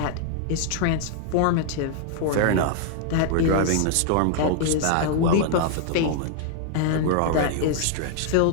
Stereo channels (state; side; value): different; both; correlation 0.00